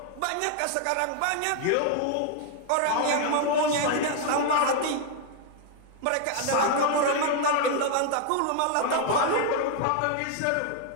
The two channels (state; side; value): different; both; correlation 0.00